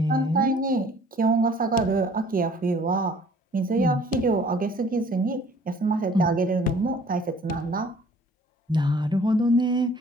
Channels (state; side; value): normal; both; correlation 0.54